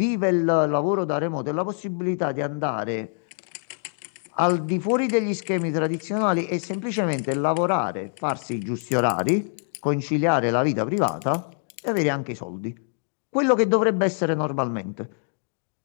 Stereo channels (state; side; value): silent; right; digital silence